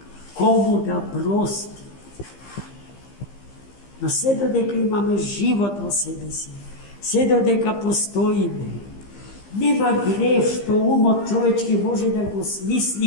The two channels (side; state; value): right; late; 15 ms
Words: кому да прости. Но се додека имаме живот во себе си, се додека постоиме, нема грев што умот човечки може да го